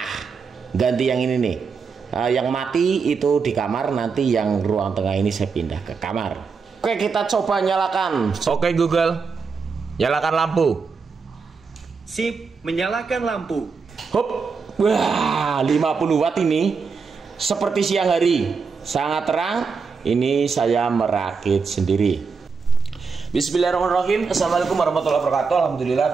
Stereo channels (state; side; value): quieter; left; 5.2 dB